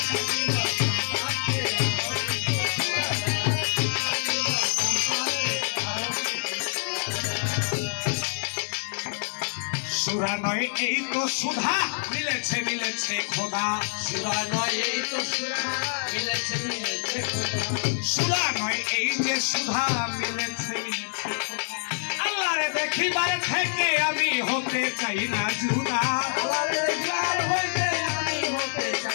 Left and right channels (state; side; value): silent; right; digital silence